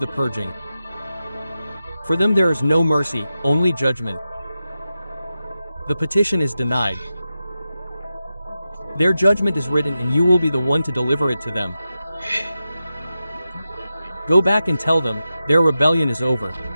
purging. For them there is no mercy, only judgment. The petition is denied. Their judgment is written and you will be the one to deliver it to them. Go back and tell them, their rebellion is over.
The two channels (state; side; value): inverted; both; correlation -0.91